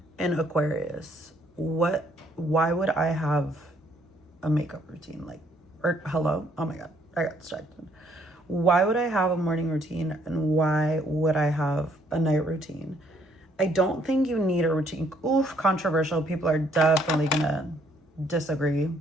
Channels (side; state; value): both; normal; correlation 0.66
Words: an Aquarius. Why would I have a makeup routine? Like, or hello? Oh my God, I got distracted. Why would I have a morning routine and why would I have a night routine? I don't think you need a routine. Oof, controversial. People are definitely gonna disagree